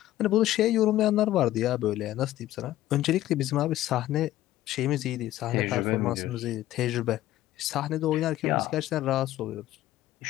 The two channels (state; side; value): quieter; right; 14.5 dB